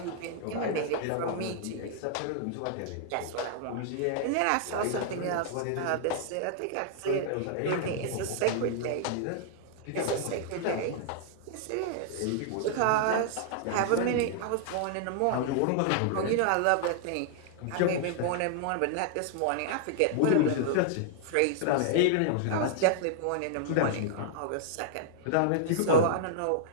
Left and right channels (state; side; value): different; both; correlation -0.01